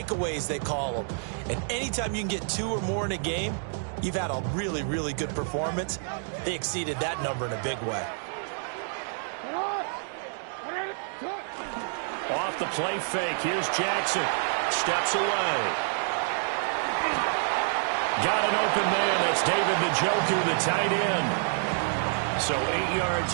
they call them. And anytime you can get 2 or more in a game, you've had a really, really good performance. They exceeded that number in a big way. Off the play fake. Here's Jackson. Steps away. Got an open man. That's David Njoku, the tight end. So 8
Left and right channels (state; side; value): silent; left; 59 dB below the other